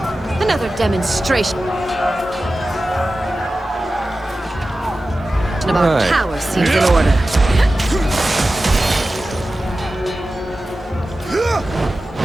it. Another demonstration. About Right. power seems in order.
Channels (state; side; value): normal; both; correlation 0.94